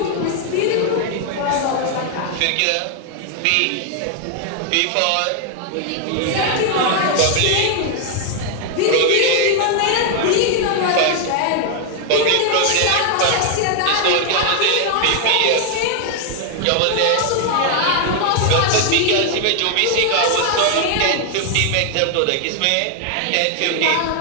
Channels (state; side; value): different; both; correlation 0.01